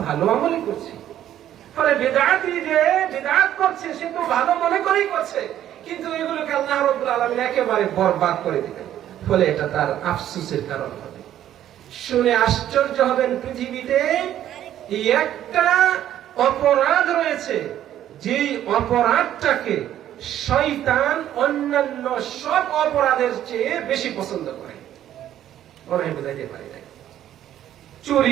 ভালো আমলই করছি। ফলে বিদআতি যে বিদআত করছে সে তো ভালো মনে করেই করছে, কিন্তু এগুলোকে আল্লাহ রাব্বুল আলামিন একেবারে বরবাদ করে দিবেন। ফলে এটা তার আফসোসের কারণ হবে। শুনে আশ্চর্য হবেন, পৃথিবীতে একটা অপরাধ রয়েছে, যেই অপরাধটাকে শয়তান অন্যান্য সব অপরাধের চেয়ে বেশি পছন্দ করে। মনে হয় বুঝাইতে পারি না।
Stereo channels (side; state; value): left; quieter; 11.6 dB